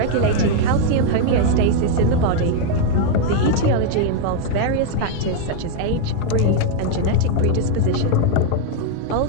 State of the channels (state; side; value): different; both; correlation 0.00